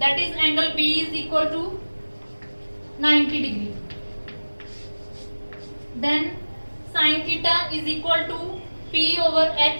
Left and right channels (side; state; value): both; inverted; correlation -1.00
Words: is angle B is equal to 90 degree. Then sin theta is equal to P over